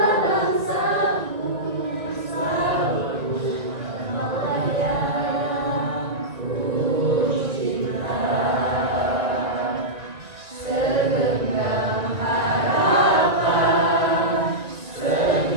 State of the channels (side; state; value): left; late; 1.7 ms